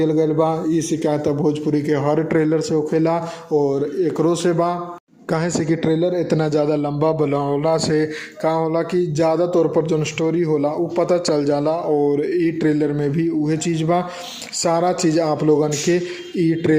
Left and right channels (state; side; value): identical; both; correlation 1.00